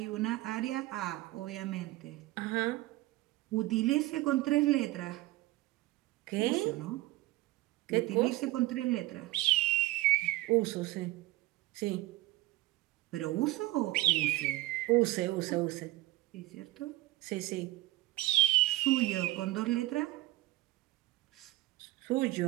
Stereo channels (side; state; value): left; quieter; 17.8 dB